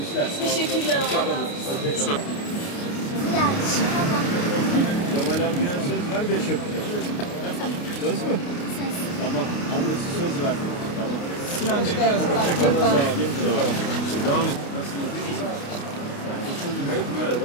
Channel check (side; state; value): right; late; 29 ms